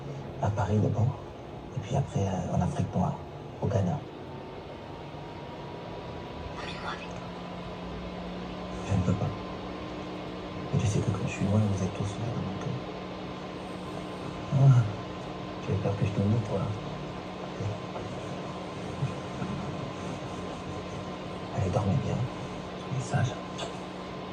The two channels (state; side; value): identical; both; correlation 1.00